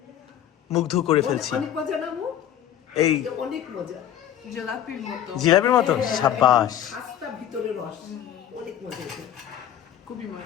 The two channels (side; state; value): right; quieter; 10.6 dB